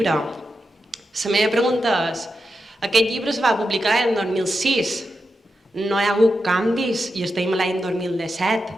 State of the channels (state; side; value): normal; both; correlation 0.88